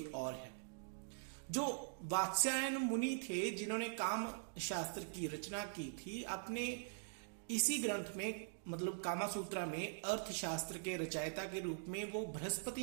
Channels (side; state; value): left; silent; digital silence